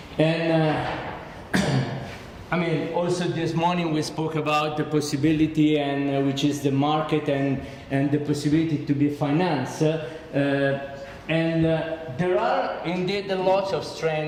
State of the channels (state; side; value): identical; both; correlation 1.00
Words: And I mean, also this morning we spoke about the possibility, and which is the market and the possibility to be financed. There are indeed a lot of